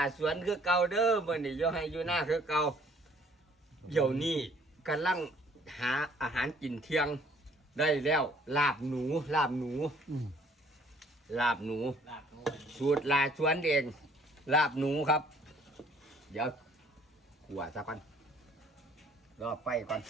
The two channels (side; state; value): both; normal; correlation 0.59